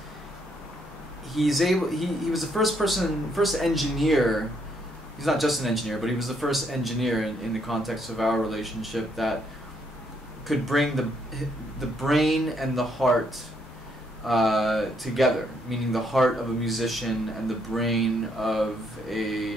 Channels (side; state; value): both; normal; correlation 0.72